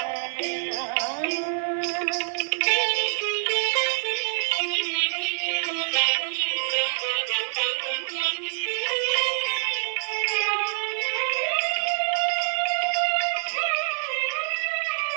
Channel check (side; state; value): left; silent; digital silence